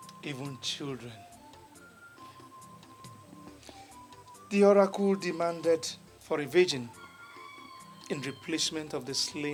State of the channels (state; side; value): identical; both; correlation 1.00